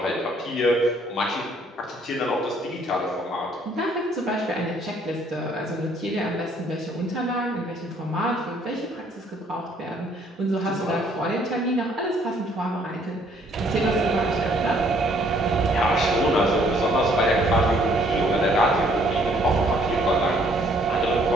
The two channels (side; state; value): both; normal; correlation 0.63